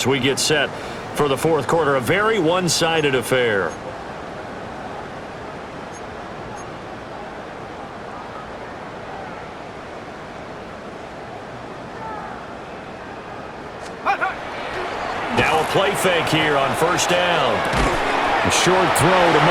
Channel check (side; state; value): both; identical; correlation 1.00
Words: we get set for the fourth quarter. A very one-sided affair. Now a play fake here on first down. A short throw to